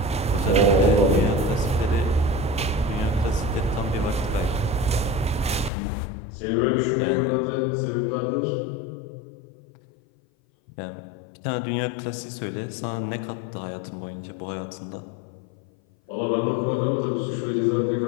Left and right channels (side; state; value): right; drops out; at 5.7 s